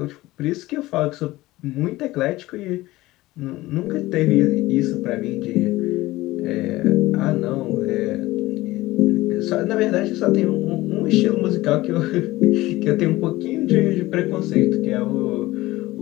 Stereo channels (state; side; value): quieter; right; 18.2 dB